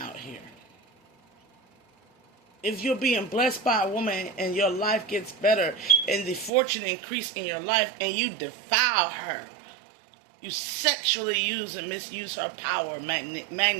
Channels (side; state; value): left; drops out; at 6.5 s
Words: here. If you're being blessed by a woman and your life gets better and the fortune increase in your life and you defile her, you sexually use and misuse her power,